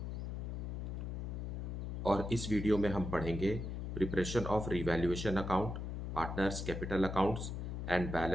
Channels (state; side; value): noise; left; hum, 4 dB below the sound